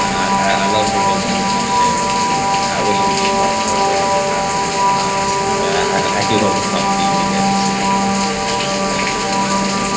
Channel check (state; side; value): identical; both; correlation 1.00